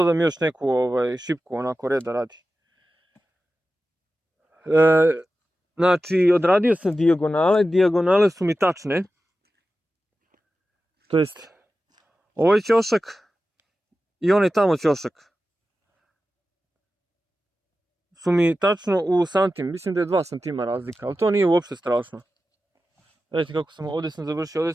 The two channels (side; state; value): both; normal; correlation 0.93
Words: još neku šipku onako reda radi. Znači odradio sam dijagonale, dijagonale su mi tačne. To jest ovaj ćošak i onaj tamo ćošak su mi tačno u santim, mislim da je 2 cm razlika, ali to nije uopšte strašno. Vidite kako sam, ovdje sam završio, ovdje